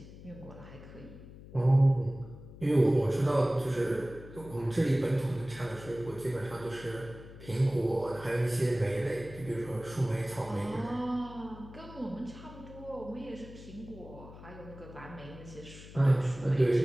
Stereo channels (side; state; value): left; noise; hum, 16 dB below the sound